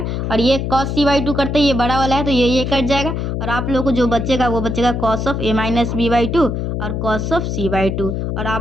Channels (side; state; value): left; noise; hum, 2 dB below the sound